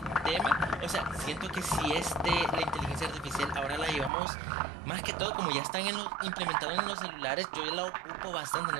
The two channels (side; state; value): left; drops out; at 4.1 s